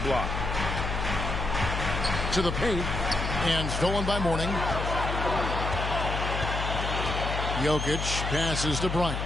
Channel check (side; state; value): left; noise; hum, 3 dB below the sound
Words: To the paint, and stolen by Mourning. Jokic passes to Bryant.